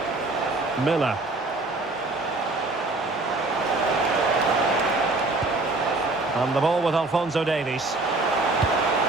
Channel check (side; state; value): left; quieter; 3.1 dB